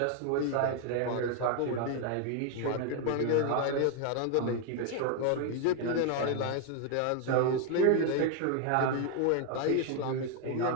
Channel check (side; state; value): both; different; correlation 0.01